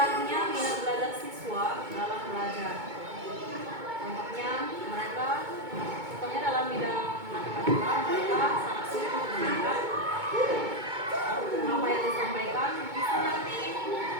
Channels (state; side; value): late; left; 2.2 ms